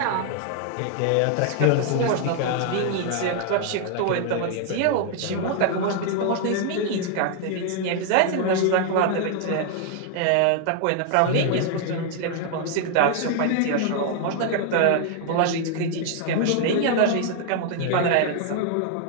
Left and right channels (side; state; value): both; different; correlation 0.00